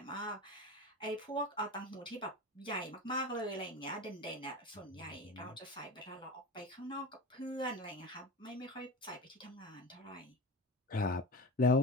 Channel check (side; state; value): both; normal; correlation 0.29